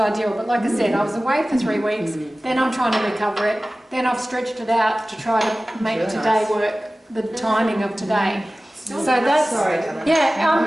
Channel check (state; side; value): normal; both; correlation 0.97